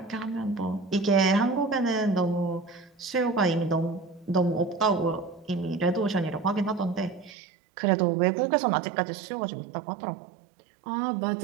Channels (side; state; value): left; drops out; at 7.3 s